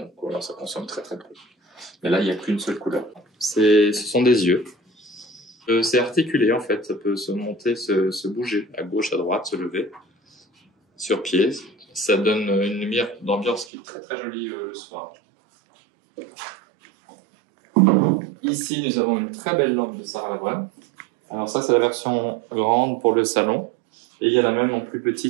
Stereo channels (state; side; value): drops out; left; at 13.7 s